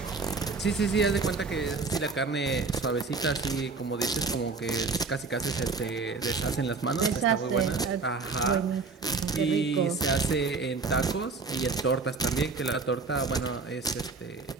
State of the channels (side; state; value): left; quieter; 4.3 dB